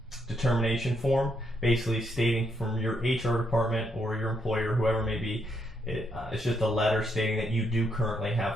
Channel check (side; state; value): both; normal; correlation 0.76